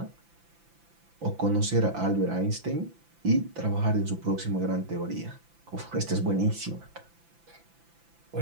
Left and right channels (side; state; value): left; late; 5.9 ms